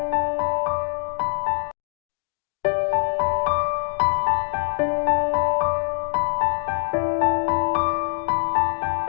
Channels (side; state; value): right; silent; digital silence